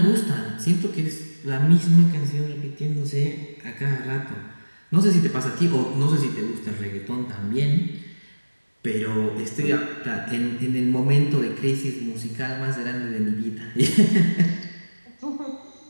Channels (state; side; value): inverted; both; correlation -1.00